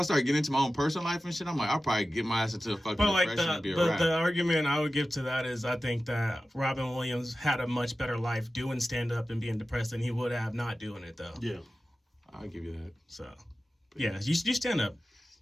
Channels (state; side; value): normal; both; correlation 0.94